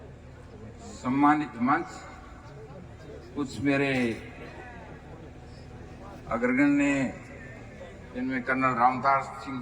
सम्मानित मंच, कुछ मेरे अग्रगण्य जिनमें कर्नल रामदास सिंह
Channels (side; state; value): both; identical; correlation 1.00